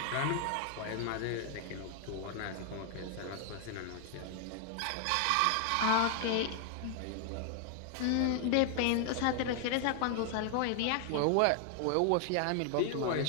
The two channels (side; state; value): both; different; correlation 0.00